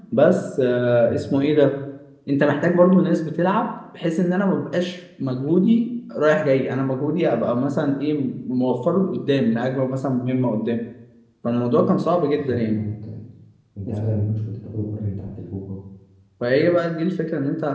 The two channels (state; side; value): identical; both; correlation 1.00